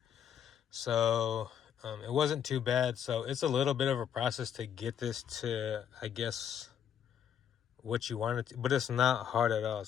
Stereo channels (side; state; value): right; quieter; 8.8 dB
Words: So it wasn't too bad. So it's a little bit of a process to get this to, I guess, what you want it to, but it's not hard at all.